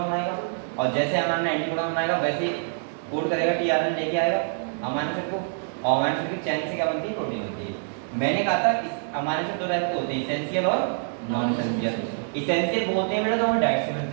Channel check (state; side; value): silent; left; digital silence